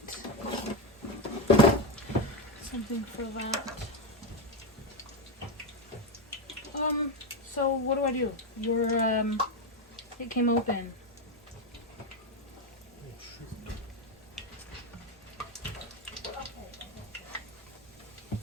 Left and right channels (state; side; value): normal; both; correlation 0.11